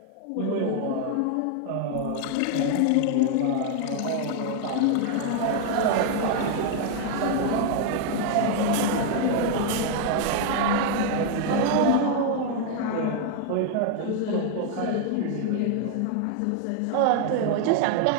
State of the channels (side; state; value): both; different; correlation 0.00